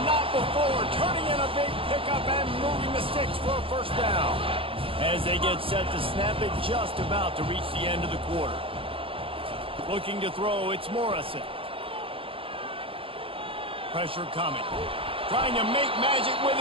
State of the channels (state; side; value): late; left; 0.26 ms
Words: not before. Turning in a big pickup and moving the sticks for a first down. As they get set to snap it, just about to reach the end of the quarter. Looking to throw, it's Morrison. Pressure coming. Trying to make magic with